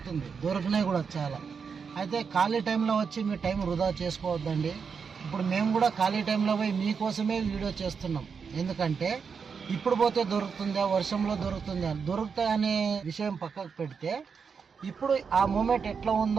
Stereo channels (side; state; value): left; quieter; 5.9 dB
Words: దొరికినాయి కూడా చాలా. అయితే ఖాళీ టైంలో వచ్చి మీ టైం వృధా చేసుకోవద్దండి. ఇప్పుడు మేము కూడా ఖాళీ టైంలో పోయి మీకోసమే వీడియో చేస్తున్నాం. ఎందుకంటే ఇప్పుడు పోతే దొరుకుతుందా, వర్షంలో దొరుకుతాయి అనే విషయం పక్కకు పెడితే ఇప్పుడు ఆ మూమెంట్ ఎట్లా